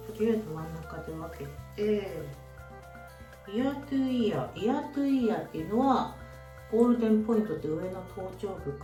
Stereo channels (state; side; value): identical; both; correlation 1.00